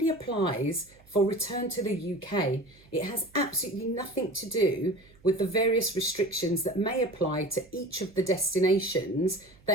applies for return to the UK. It has absolutely nothing to do with the various restrictions that may apply to each of the destinations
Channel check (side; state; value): right; noise; hum, 28 dB below the sound